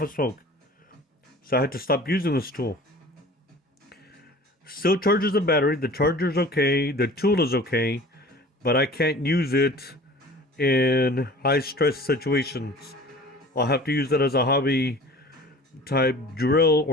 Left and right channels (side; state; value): both; normal; correlation 0.43